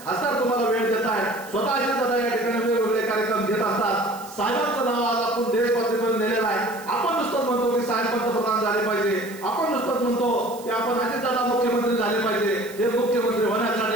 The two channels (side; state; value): right; noise; hiss, 19 dB below the sound